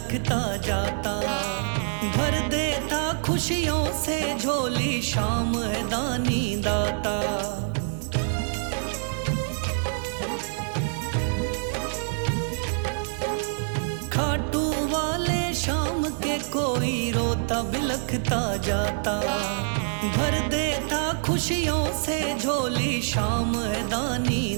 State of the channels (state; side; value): silent; left; digital silence